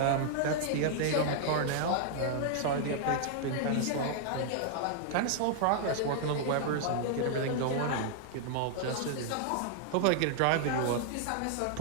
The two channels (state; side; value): different; both; correlation -0.01